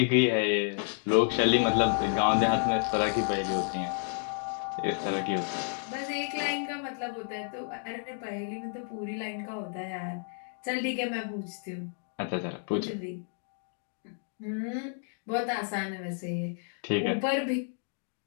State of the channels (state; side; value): silent; right; 57 dB below the other